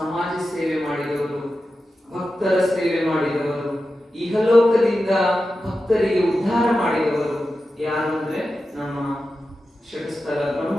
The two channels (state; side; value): normal; both; correlation 0.92